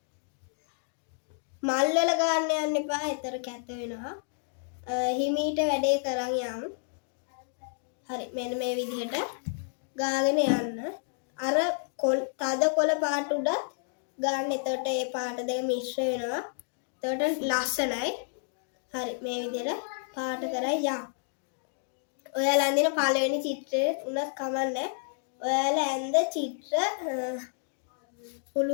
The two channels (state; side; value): silent; right; digital silence